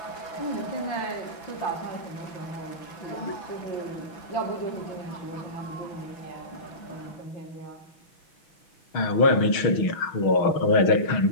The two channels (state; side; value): late; right; 6.3 ms